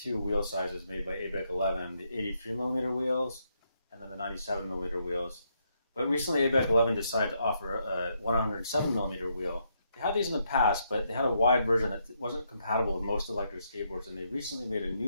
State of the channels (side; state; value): both; inverted; correlation -0.77